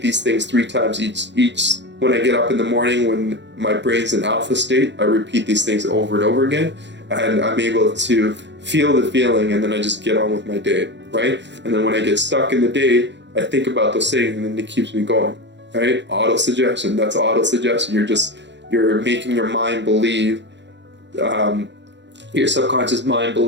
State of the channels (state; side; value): late; left; 0.52 ms